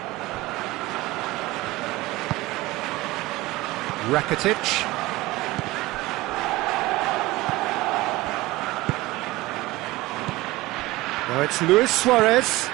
Rakitic. Now it's Luis Suarez.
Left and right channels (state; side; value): quieter; left; 19.2 dB